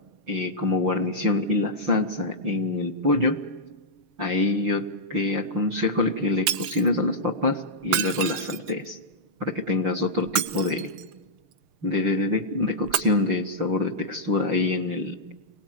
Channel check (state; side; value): late; left; 7.4 ms